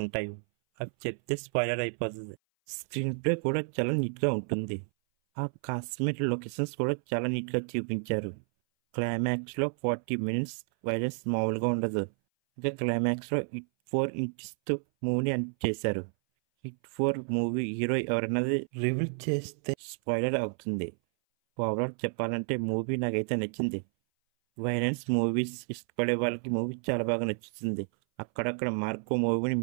అవి చెప్తే స్పాయిలర్ అయిపోతుంది. స్క్రీన్ ప్లే కూడా చాలా నీట్గా ఉంటుంది. ఆ కాశ్మీర్ లొకేషన్స్ కూడా చాలా నీట్గా చూపించారు. క్లైమాక్స్లో 40 మినిట్స్ వైలెన్స్ మామూలుగా ఉండదు. ఇంకా క్లైమాక్స్లో హిట్ 4 ఇంచెస్తో మూవీని ఎండ్ చేశారు. హిట్ 4 మూవీ హీరో ఎవరన్నది రివీల్ చేస్తే స్పాయిలర్ అవుతుంది. ఓవరాల్ చెప్పాలంటే మూవీ నాకైతే నచ్చింది. వైలెన్స్ మూవీస్ ఇష్టపడే వాళ్ళకి మూవీ చాలా బాగా నచ్చుతుంది. అక్కడక్కడ మార్కో మూవీని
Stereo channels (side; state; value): left; silent; 57 dB below the other